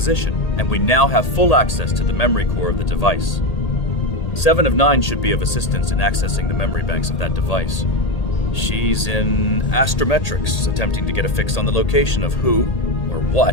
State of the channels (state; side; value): late; right; 1.8 ms